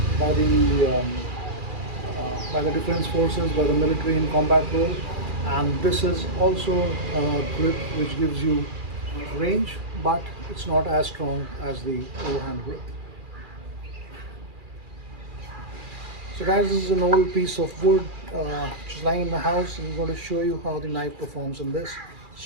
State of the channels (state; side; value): late; left; 2.4 ms